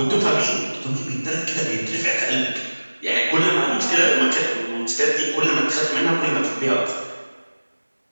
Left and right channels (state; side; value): inverted; both; correlation -1.00